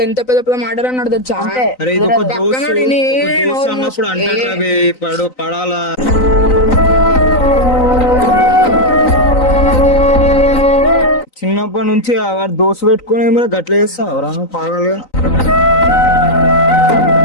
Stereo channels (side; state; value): right; late; 3.9 ms